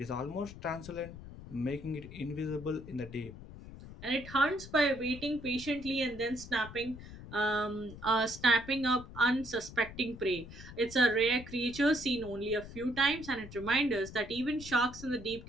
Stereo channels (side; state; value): left; noise; rumble, 14 dB below the sound